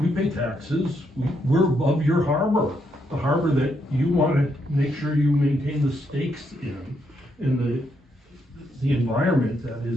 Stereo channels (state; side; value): normal; both; correlation 0.77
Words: pay taxes, we're above your harbor. The harbor that you want to make sure you maintain the stakes in the environment that